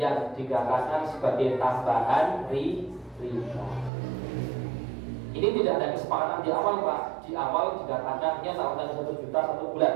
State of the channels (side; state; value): left; drops out; at 3.9 s